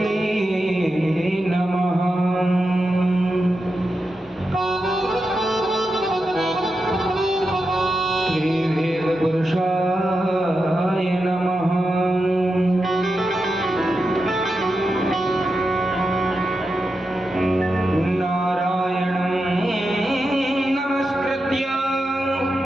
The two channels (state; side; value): normal; both; correlation 0.88